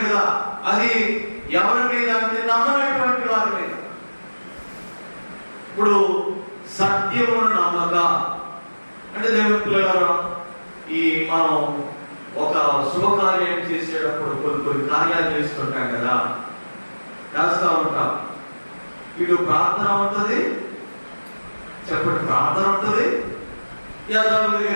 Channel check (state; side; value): inverted; both; correlation -1.00